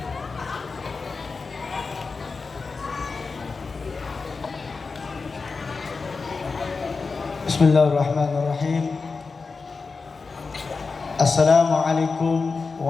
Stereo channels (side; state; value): right; quieter; 4.4 dB